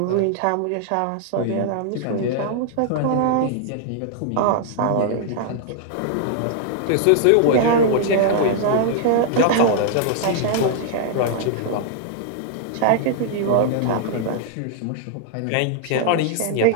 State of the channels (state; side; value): different; both; correlation -0.01